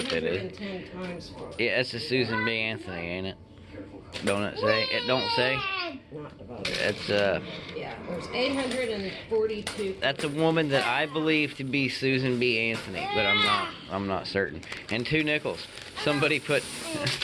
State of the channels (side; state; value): both; identical; correlation 1.00